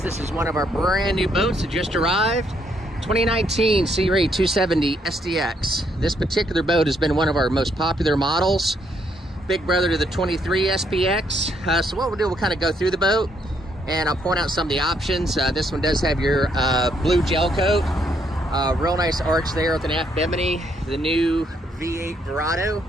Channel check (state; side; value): normal; both; correlation 0.72